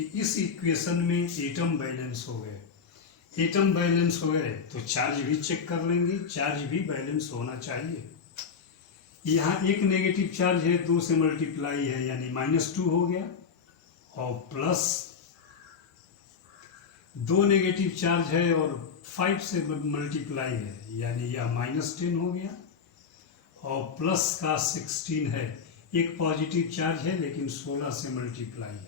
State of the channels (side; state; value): right; quieter; 6.0 dB